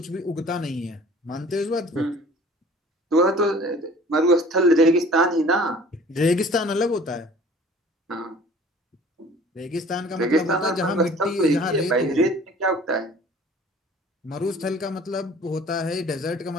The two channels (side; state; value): both; normal; correlation 0.49